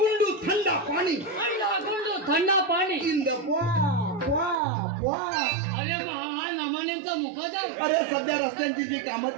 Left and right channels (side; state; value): left; drops out; at 4.5 s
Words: थंडा पाणी अंडा गुंडू थंडा पाणी. इन द अरे हा नमान्यांचा मुखोदर. अरे सध्या रस्त्यांची जी कामं